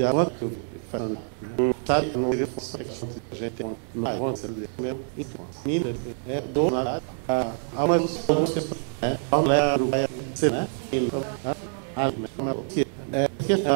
avanço que eu faço. Sabe, não é a gente tem uma avanço mesmo. Então, é donar a uma pessoa, a mulher vai ser, né?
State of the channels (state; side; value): silent; left; 61 dB below the other